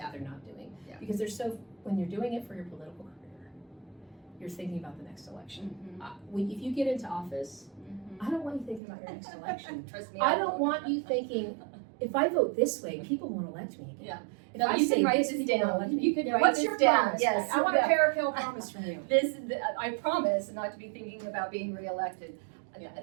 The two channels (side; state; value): left; drops out; at 8.8 s